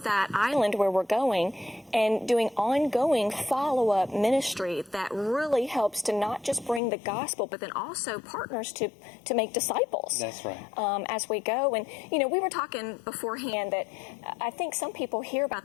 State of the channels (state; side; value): drops out; right; at 6.8 s